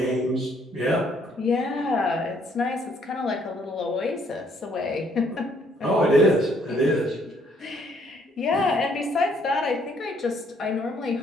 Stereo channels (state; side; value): normal; both; correlation 0.66